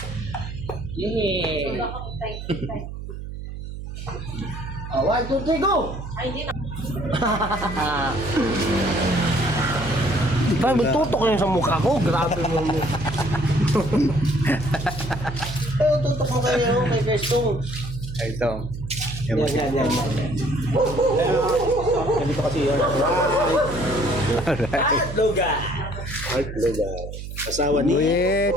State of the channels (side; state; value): right; noise; hum, 9 dB below the sound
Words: Yeah. 1, 2, 3, go! Parang may tutok yun sa mukha ko. Grabe mo mo. Pero tutok mo kayo kay Gerstong. Ito. Yan. Ganito kasi yun. At Logan. At Logan. Asawa ni Buyet.